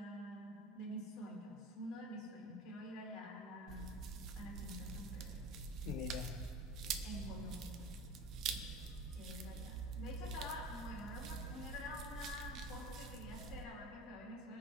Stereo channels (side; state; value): both; normal; correlation 0.36